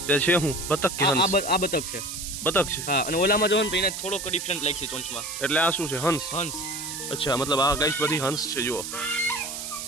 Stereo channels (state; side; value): noise; right; hiss, 7 dB below the sound